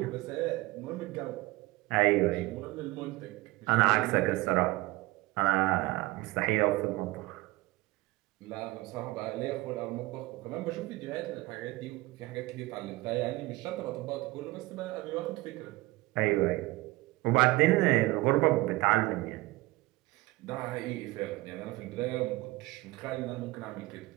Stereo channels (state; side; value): quieter; left; 20.5 dB